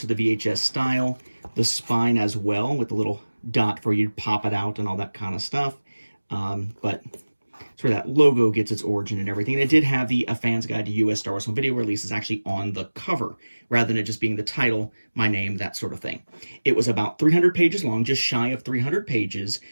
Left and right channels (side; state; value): both; inverted; correlation -1.00